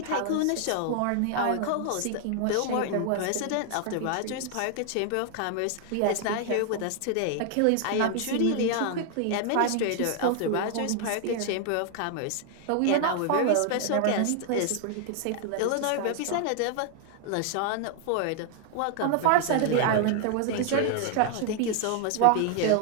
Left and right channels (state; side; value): different; both; correlation 0.00